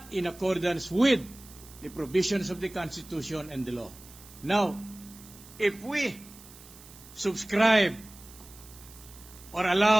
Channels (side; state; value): right; noise; hiss, 20 dB below the sound